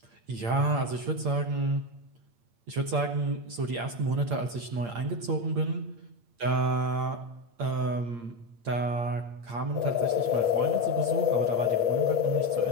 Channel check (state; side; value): late; left; 8.6 ms